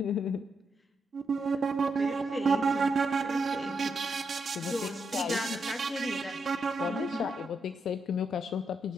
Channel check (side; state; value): both; normal; correlation 0.82